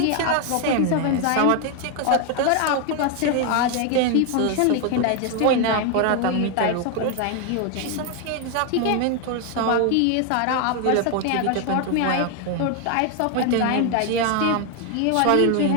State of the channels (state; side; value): different; both; correlation 0.01